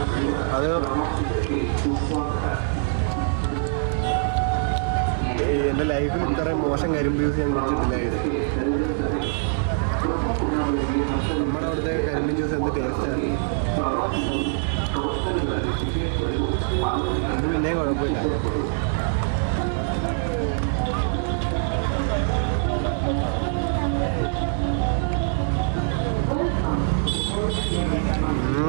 അത് എൻ്റെ ലൈഫിൽ ഇത്രയും മോശം കരിമ്പ് ജ്യൂസ് ഞാൻ കുടിച്ചിട്ടില്ലായിരുന്നു. നമ്മുടെ അവിടുത്തെ കരിമ്പ് ജ്യൂസ് എന്ത് ടേസ്റ്റാണ്. ഇത് പിന്നെയും കുഴപ്പമില്ല.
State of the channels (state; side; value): silent; left; digital silence